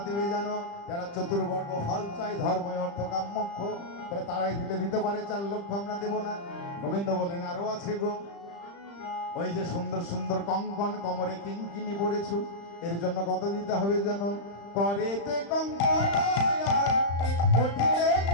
দেবে জানো? যারা চতুর্বর্গ ফল চাই, ধর্ম অর্থ কাম মোক্ষ, বলে তারাই দিতে পারে 4 লক্ষ আমরা দেব না। গোবিন্দ বলেন আরো আছে গো, ওই যে সুন্দর সুন্দর কঙ্কন কমরে কিঙ্কিনি পড়েছো, এর জন্য কত দিতে হবে জানো? করেতে কঙ্কন আর কোটিতে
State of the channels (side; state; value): right; late; 35 ms